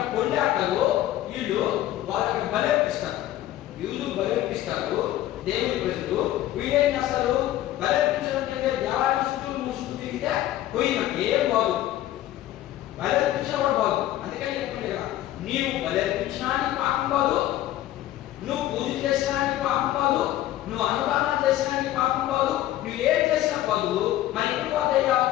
పొందాటలు, వీళ్ళు వాళ్ళకి బలర్పిస్తారు. యూదు బలర్పిస్తారు దేవుని ప్రజలు. వీళ్ళేం చేస్తారు? బలర్పించడం కంటే దేవాలయం చుట్టూ మూసుకు తిరిగితే పోయినట్టు ఏం బాగు. బలర్పించిన కూడా బాగు. అందుకని చెప్పండి కదా, నీవు బలర్పించడానికి పాపం కాదు, నువ్వు పూజ చేసడానికి పాపం కాదు, నువ్వు అనుదానం చేసడానికి పాపం కాదు, నువ్వు ఏం చేసినా కాదు. మరి ఎప్పుడు పోతాయ్యా?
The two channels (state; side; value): quieter; right; 13.9 dB